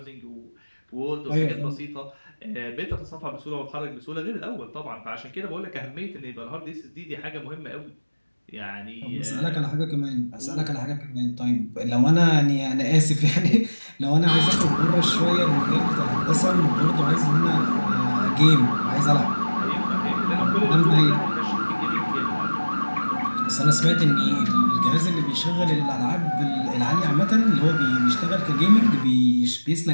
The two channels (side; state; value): both; inverted; correlation -1.00